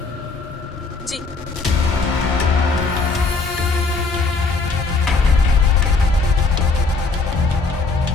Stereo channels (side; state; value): right; quieter; 3.9 dB